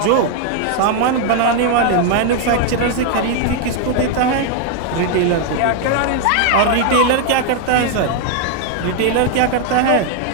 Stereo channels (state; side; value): different; both; correlation 0.00